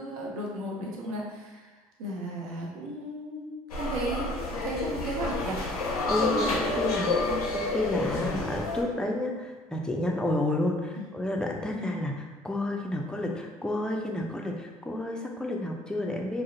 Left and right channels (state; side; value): normal; both; correlation 0.58